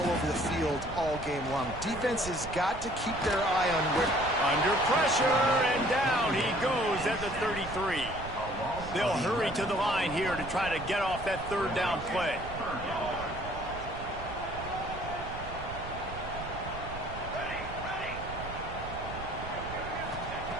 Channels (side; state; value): right; noise; rumble, 11 dB below the sound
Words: over the field all game long. Defense has got to keep their eye on where... Under pressure, and down he goes at the 33. They'll hurry to the line here to try to get off that third down play.